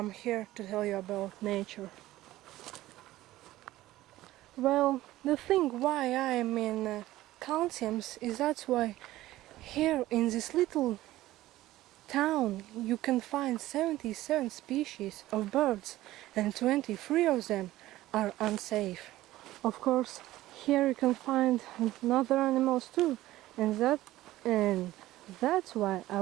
here to tell you about nature. Well, the thing why I am in Kaunsiems is that's why here in this little town you can find 77 species of birds and 23 of them are unsafe. Of course, here you can find other animals too, and that's why I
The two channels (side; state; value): left; quieter; 16.0 dB